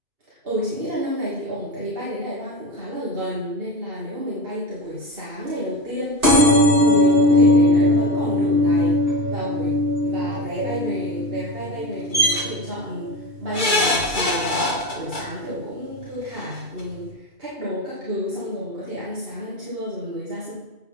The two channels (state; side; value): late; left; 2.3 ms